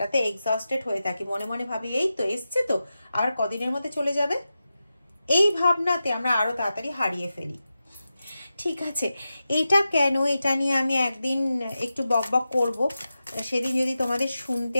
এক্সস্টেড হয়ে থাকি। মনে মনে ভাবি এই তো এসছে, তো আর কদিনের মধ্যে চলে যাবে, এই ভাবনাতে আমরা আরো তাড়াতাড়ি হারিয়ে ফেলি, ঠিক আছে? এটা কেন, এটা নিয়ে আমি একদিন একটু বকবক করব, সেদিন যদি তোমাদের শুনতে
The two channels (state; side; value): inverted; both; correlation -0.92